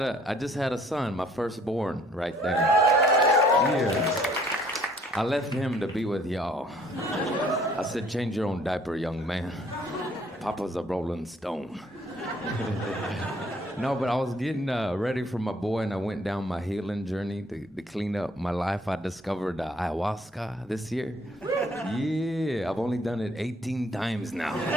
had a son, my firstborn, right there. Yeah. I left him to be with y'all. I said, change your own diaper, young man. Papa's a rolling stone. No, but I was getting ready for my boy, and I went down my healing journey to clean up my life. I discovered ayahuasca this year. Yeah, I've only done it 18 times now.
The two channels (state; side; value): normal; both; correlation 0.60